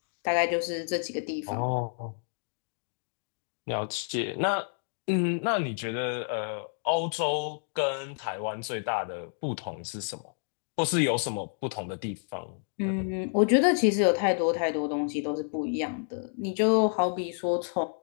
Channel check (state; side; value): silent; right; digital silence